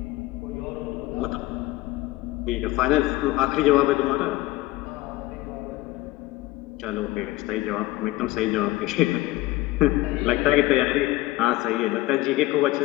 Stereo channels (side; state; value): right; quieter; 17.9 dB